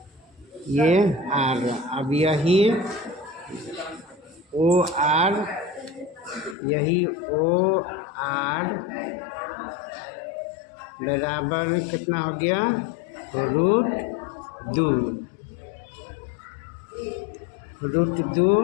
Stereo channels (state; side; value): drops out; right; at 6.6 s